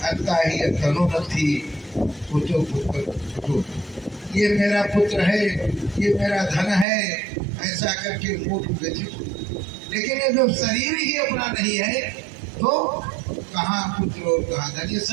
ही तनो नथी पुतो पुत्र। ये मेरा पुत्र है, ये मेरा धन है, ऐसा करके मूर्ख व्यथित। लेकिन ये जब शरीर ही अपना नहीं है तो कहाँ पुत्र और कहाँ धन। ये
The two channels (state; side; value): drops out; left; at 6.9 s